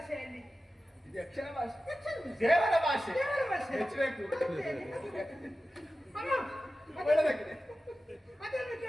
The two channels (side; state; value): both; normal; correlation 0.94